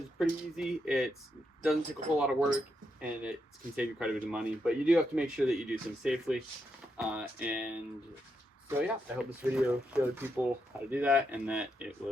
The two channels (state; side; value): normal; both; correlation 0.82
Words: is pretty easy. It doesn't take a whole lot of work and it can save you quite a bit of money, but you do have to make sure that you do things safely. And so yeah, I hope this video showed people how to do that and that it